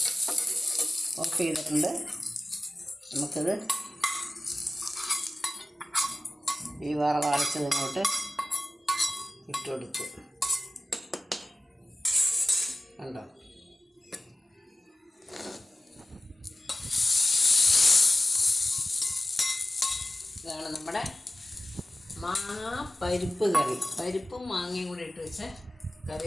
ഓഫ് ചെയ്തിട്ടുണ്ട്. നമുക്കിത് ഈ വറവരച്ചത് ഇങ്ങോട്ട് ഇട്ട് കൊടുത്തു. കണ്ടോ, ഇതാണ് നമ്മുടെ മാങ്ങ പരിപ്പ് കറി. പരിപ്പും മാങ്ങയും കൂടി ഇട്ട് വെച്ച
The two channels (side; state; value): both; normal; correlation 0.96